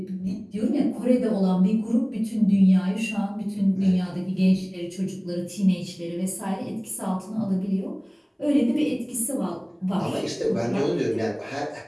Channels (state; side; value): identical; both; correlation 1.00